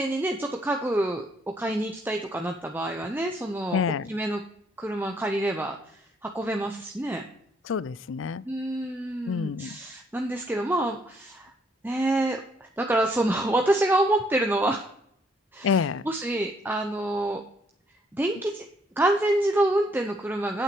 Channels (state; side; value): normal; both; correlation 0.69